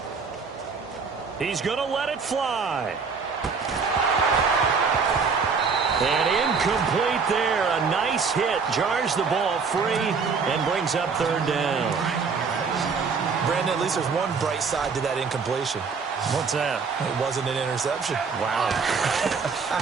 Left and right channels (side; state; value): left; quieter; 5.3 dB